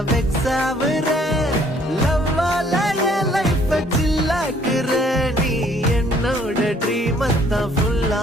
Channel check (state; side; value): normal; both; correlation 0.61